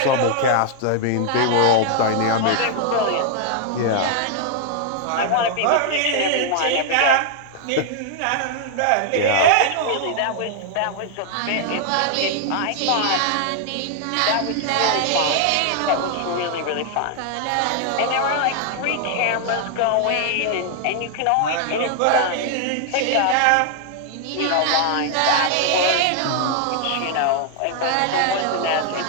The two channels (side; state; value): both; different; correlation 0.00